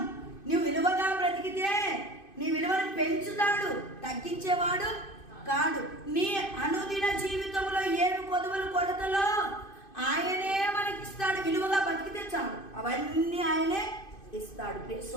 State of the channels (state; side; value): late; right; 2.5 ms